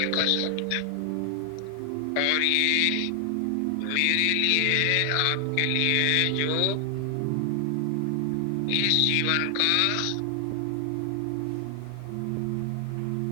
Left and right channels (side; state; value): both; different; correlation 0.00